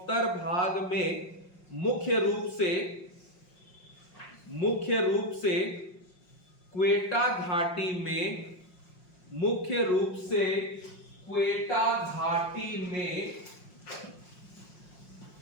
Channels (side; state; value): right; late; 5.6 ms